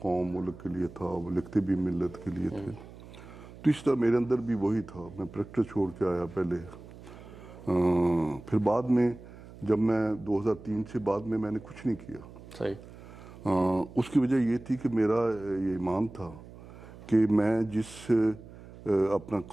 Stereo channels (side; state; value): right; noise; hum, 17 dB below the sound